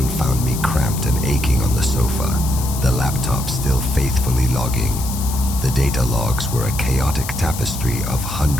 found me cramped and aching on the sofa, the laptop still faithfully logging. The data logs were a chaotic tapestry of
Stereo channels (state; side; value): noise; left; hiss, 9 dB below the sound